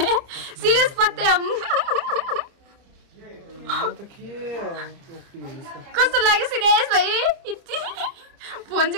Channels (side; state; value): left; late; 30 ms